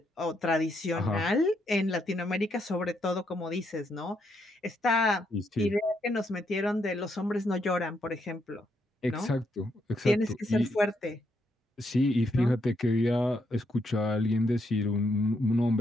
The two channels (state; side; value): normal; both; correlation 0.77